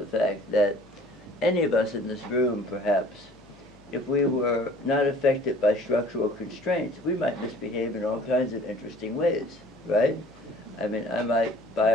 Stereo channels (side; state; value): left; noise; hum, 27 dB below the sound